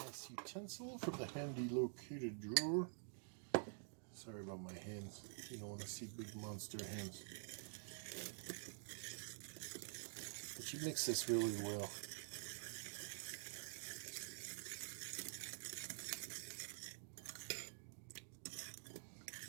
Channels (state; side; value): silent; left; digital silence